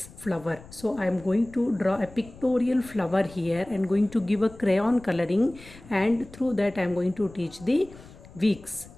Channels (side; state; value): left; noise; rumble, 20 dB below the sound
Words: flower, so I am going to draw a pictorial flower here and going to give a crayon coloring, and through that I am going to teach the weeks.